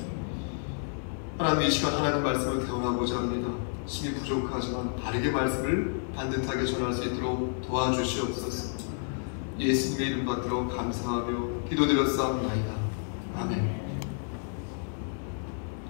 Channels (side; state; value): right; silent; 58 dB below the other